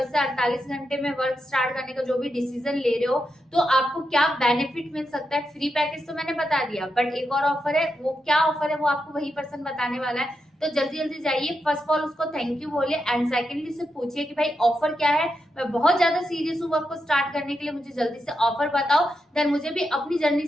से 48 घंटे में वर्क स्टार्ट करने का जो भी डिसीजन ले रहे हो तो आपको क्या बेनिफिट मिल सकता है। फ्री पैकेज तो मैंने बता दिया, बट एक और ऑफर है, वो क्या ऑफर है वो आपको वही पर्सन बताने वाला है। तो जल्दी जल्दी जाइए, फर्स्ट ऑफ ऑल उसको थैंक यू बोलिए, एंड सेकेंडली से पूछिए कि भाई ऑफर क्या है, मैं बहुत ज्यादा सीरियस हूँ वर्क को स्टार्ट करने के लिए, मुझे जल्दी से ऑफर बताओ, देन मुझे भी अपनी जर्नी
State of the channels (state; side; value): normal; both; correlation 0.86